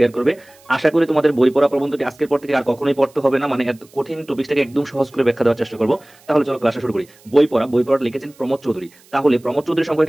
করবে। আশা করি তোমাদের বই পড়া প্রবন্ধটি আজকের পর থেকে আর কখনোই পড়তে হবে না, মানে এত কঠিন টপিকটাকে একদম সহজ করে ব্যাখ্যা দেওয়ার চেষ্টা করবো। তাহলে চলো ক্লাসটা শুরু করি। বই পড়া লিখেছেন প্রমোদ চৌধুরী। তাহলে প্রমোদ চৌধুরী সম্পর্কে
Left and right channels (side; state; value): right; noise; hiss, 28 dB below the sound